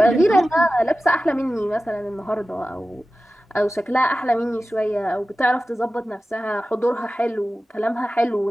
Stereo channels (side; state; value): both; normal; correlation 0.95